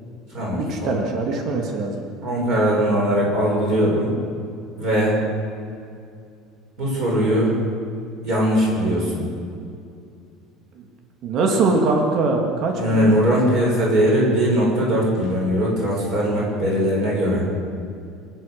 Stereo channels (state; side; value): normal; both; correlation 0.42